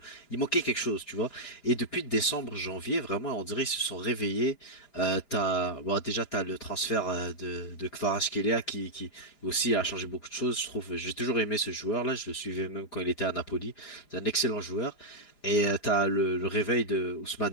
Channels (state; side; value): late; right; 4.9 ms